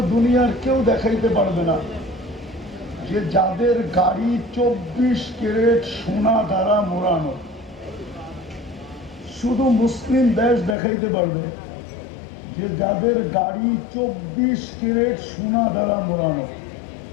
দুনিয়ার কেউ দেখাইতে পারবে না যে যাদের গাড়ি 24 ক্যারেট সোনা দ্বারা মোড়ানো। শুধু মুসলিম দেশ দেখাইতে পারবে যে যাদের গাড়ি 24 ক্যারেট সোনা দ্বারা মোড়ানো।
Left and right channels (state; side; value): drops out; right; at 10.8 s